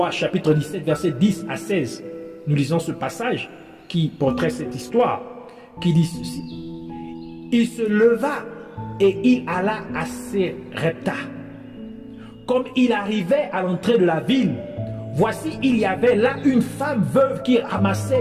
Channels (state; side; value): identical; both; correlation 1.00